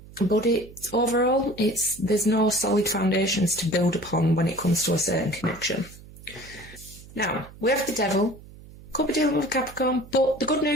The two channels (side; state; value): right; noise; hum, 19 dB below the sound